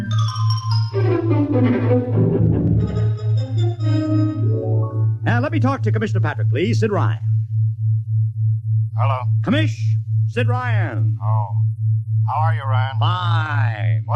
Let me talk to Commissioner Patrick, please. Sid Ryan. Hello. Commish, Sid Ryan. Oh. How are you, Ryan? Fine.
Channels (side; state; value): both; identical; correlation 1.00